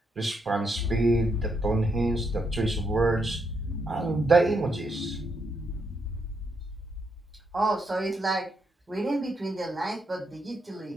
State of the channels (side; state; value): both; normal; correlation 0.78